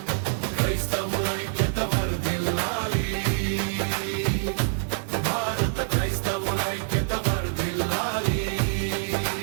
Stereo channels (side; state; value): left; silent; digital silence